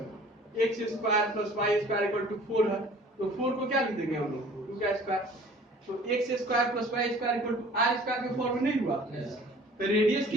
x square plus y square equal to 4 है, तो 4 को क्या लिख देंगे हम लोग, 2 का स्क्वायर, तो x square plus y square equal to r square के फॉर्म में नहीं हुआ, तो रेडियस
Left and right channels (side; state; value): both; normal; correlation 0.49